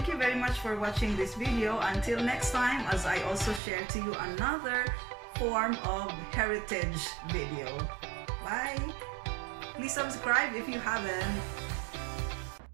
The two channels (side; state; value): left; drops out; at 3.6 s